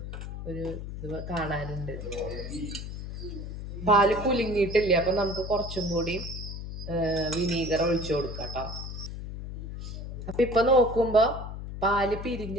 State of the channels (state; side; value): noise; left; hum, 8 dB below the sound